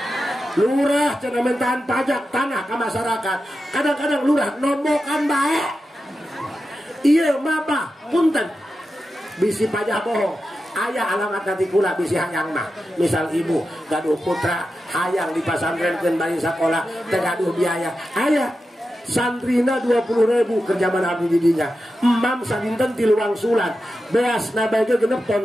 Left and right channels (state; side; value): normal; both; correlation 0.91